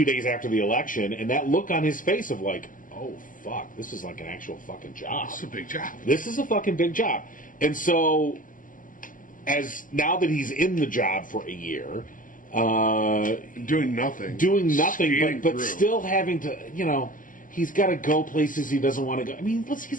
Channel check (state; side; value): late; right; 0.39 ms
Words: after the election, and that look on his face of like, oh, fuck, this is like an actual fucking job. This is a big job. This is a fucking big job. And so... now that he's in the job for a year, doing nothing, but still having to, he's got to go places he doesn't want to go. I mean,